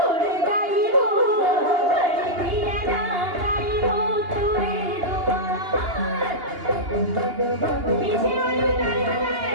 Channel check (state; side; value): late; left; 2.8 ms